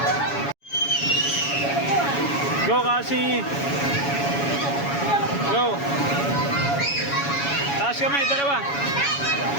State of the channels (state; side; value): late; right; 7.1 ms